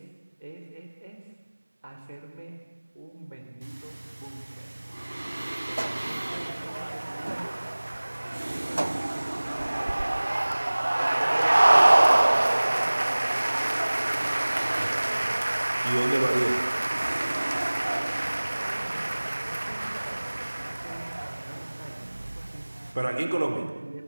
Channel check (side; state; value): both; inverted; correlation -1.00